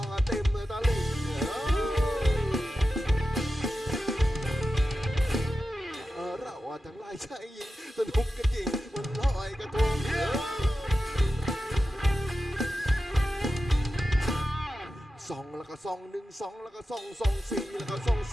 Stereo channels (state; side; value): normal; both; correlation 0.92